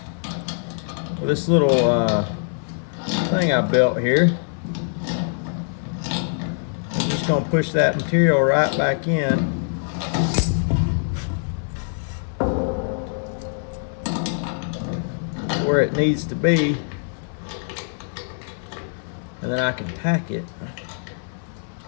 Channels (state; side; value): silent; right; digital silence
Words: with this little thing I built here. I'm just gonna push that material right back in. Where it needs to be. And then I can tack it.